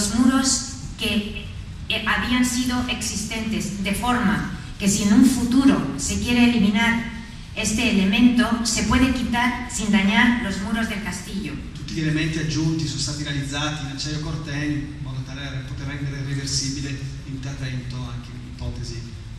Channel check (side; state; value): both; identical; correlation 1.00